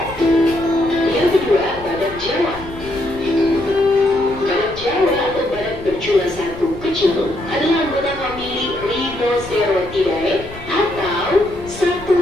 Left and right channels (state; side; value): noise; left; rumble, 16 dB below the sound